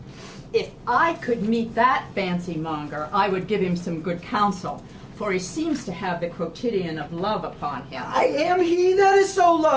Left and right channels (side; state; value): both; identical; correlation 1.00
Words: If I could meet that fancy monger, I would give him some good counsel, for he seems to have the quotidian of love upon him. I am he that is so